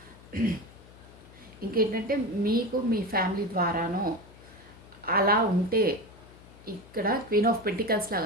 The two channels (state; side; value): noise; left; hum, 22 dB below the sound